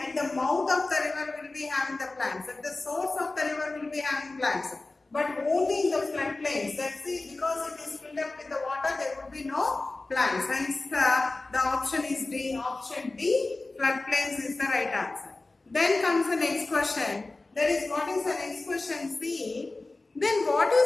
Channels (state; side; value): quieter; right; 3.2 dB